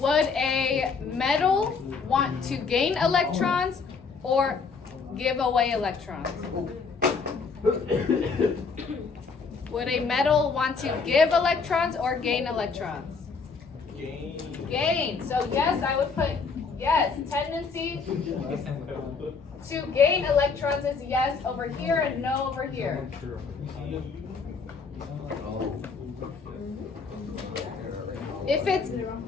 a metal want to gain electrons or give away electrons? Would a metal want to give electrons or gain electrons? Gain. So yes, I would put yes. Tendency to gain electrons is yes over here and no over here. If it's,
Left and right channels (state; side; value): quieter; right; 5.0 dB